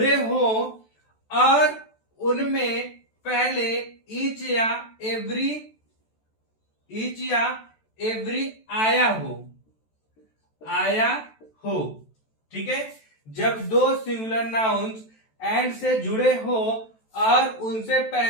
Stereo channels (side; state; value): right; late; 14 ms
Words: हो और उनमें पहले ईच या एवरी आया हो। ठीक है, जब दो सिंगुलर नाउन्स एंड से जुड़े हो और उनसे